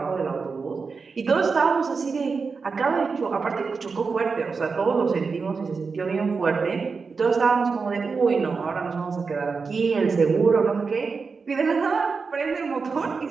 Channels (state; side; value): quieter; left; 4.8 dB